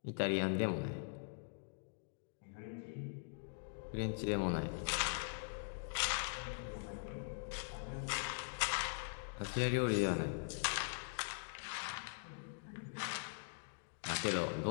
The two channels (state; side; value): silent; right; digital silence